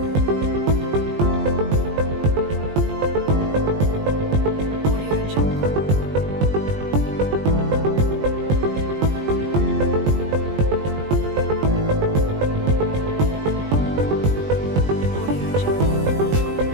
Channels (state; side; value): late; left; 20 ms